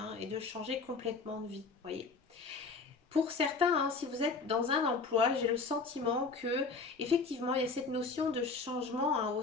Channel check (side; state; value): right; quieter; 4.3 dB